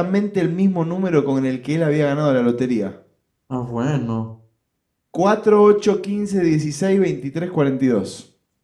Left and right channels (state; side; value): identical; both; correlation 1.00